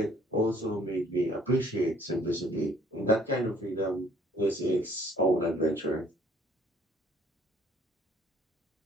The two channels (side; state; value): both; normal; correlation 0.58